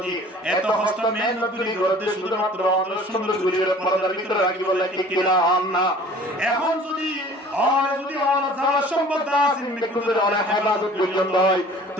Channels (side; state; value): both; normal; correlation 0.48